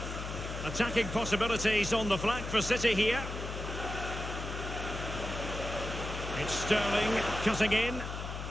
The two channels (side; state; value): left; noise; hum, 6 dB below the sound